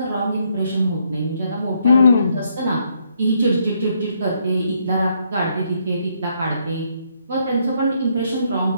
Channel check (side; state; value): both; inverted; correlation -0.73